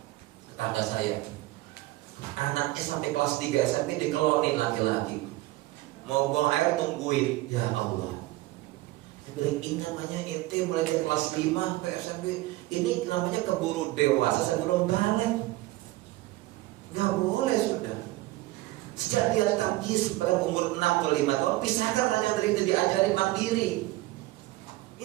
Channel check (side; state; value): left; quieter; 18.7 dB